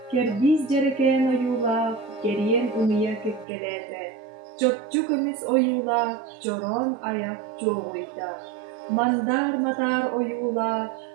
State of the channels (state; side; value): drops out; left; at 3.5 s